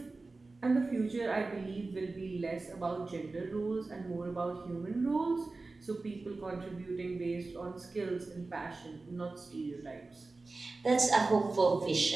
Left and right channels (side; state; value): left; quieter; 3.6 dB